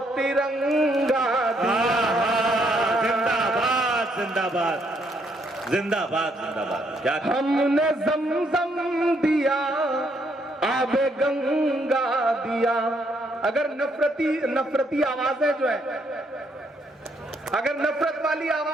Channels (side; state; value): both; normal; correlation 0.72